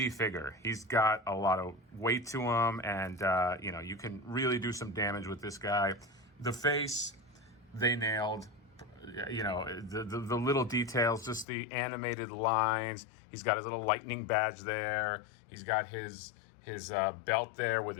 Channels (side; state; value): right; drops out; at 11.5 s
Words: figure. He's got a lot of weight to him, and you can really do some damage with this guy. The face, they nailed. The little details, just the animated lines. He's got his little lightning badge there. He's got his belt there with